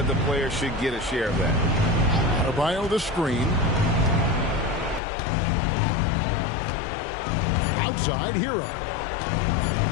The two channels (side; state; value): right; drops out; at 5.0 s